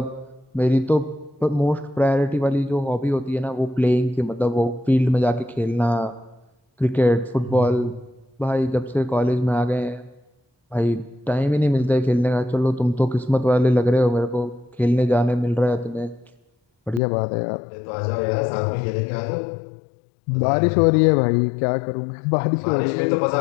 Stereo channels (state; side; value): drops out; right; at 17.0 s